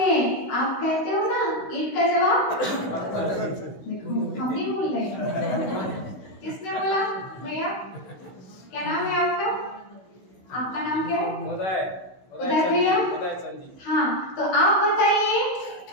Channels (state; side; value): late; right; 16 ms